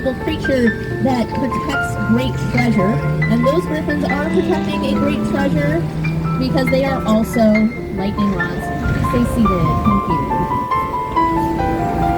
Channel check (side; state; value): both; identical; correlation 1.00